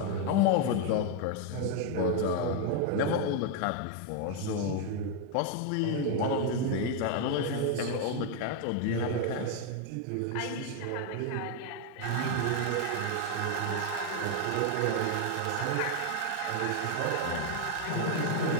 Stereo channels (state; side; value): different; both; correlation 0.01